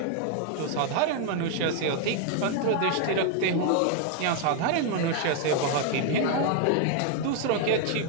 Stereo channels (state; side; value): different; both; correlation 0.00